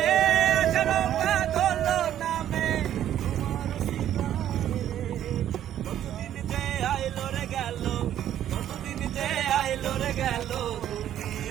আষাঢ় বাদল নামে কতদিন যে আইলো রে গেল কতদিন যে আইলো রে গেল তুমি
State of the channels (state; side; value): quieter; left; 11.2 dB